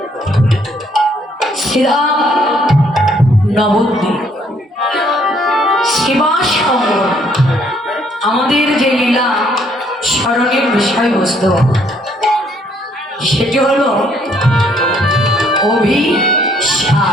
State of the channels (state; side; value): normal; both; correlation 0.66